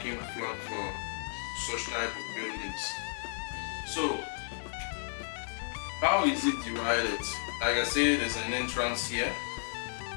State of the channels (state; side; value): silent; right; 56 dB below the other